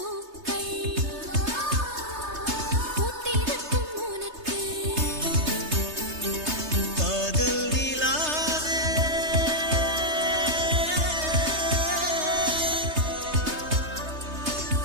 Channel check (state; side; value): late; left; 3.3 ms